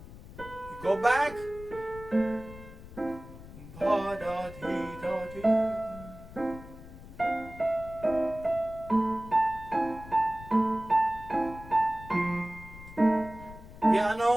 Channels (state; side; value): noise; left; rumble, 16 dB below the sound